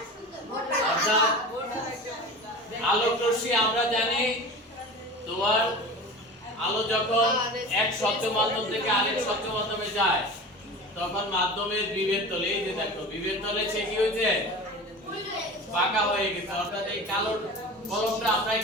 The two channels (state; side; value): normal; both; correlation 0.34